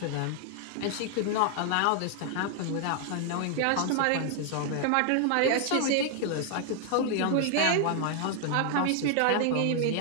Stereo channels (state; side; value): different; both; correlation 0.00